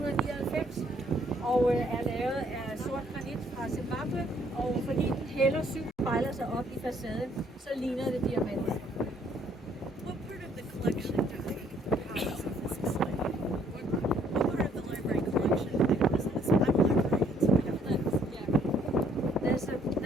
og er lavet af sort granit fra Zimbabwe, og fordi den hælder syv spejler sig op i facaden, så ligner det diamanter. What part of the collection do they house of this display? What part of the library collection? I know this. I'm a librarian, so I have things. Yeah.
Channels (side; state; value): both; normal; correlation 0.65